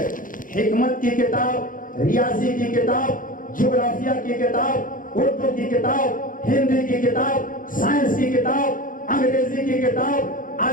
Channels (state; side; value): late; right; 0.39 ms